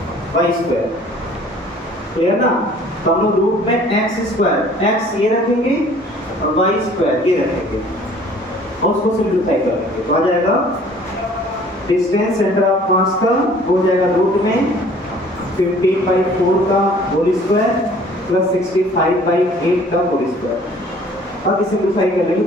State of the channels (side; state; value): both; normal; correlation 0.53